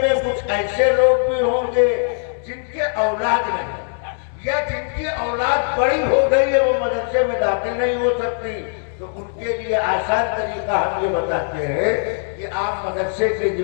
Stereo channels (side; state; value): right; silent; 65 dB below the other